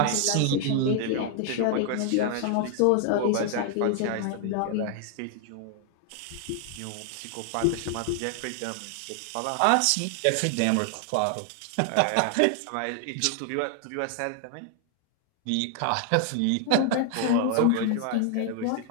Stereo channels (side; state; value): both; different; correlation 0.00